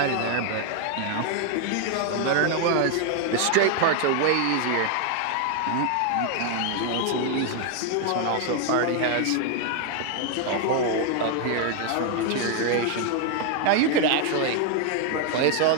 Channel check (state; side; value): different; both; correlation 0.00